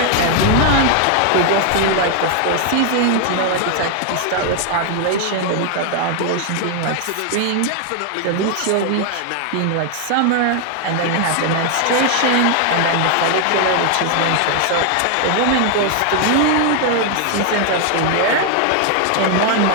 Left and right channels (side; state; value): both; different; correlation 0.00